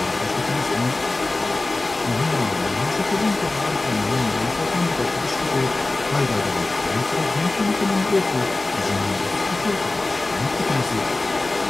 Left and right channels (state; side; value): quieter; right; 3.0 dB